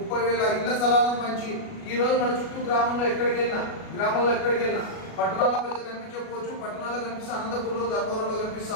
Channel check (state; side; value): late; right; 37 ms